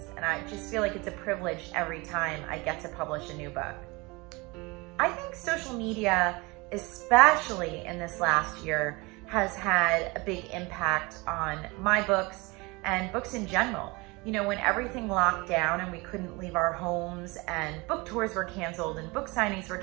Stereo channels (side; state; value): left; quieter; 25.1 dB